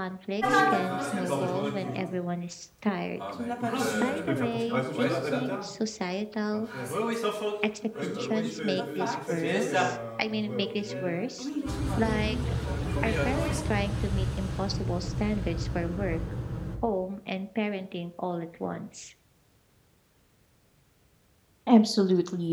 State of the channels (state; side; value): identical; both; correlation 1.00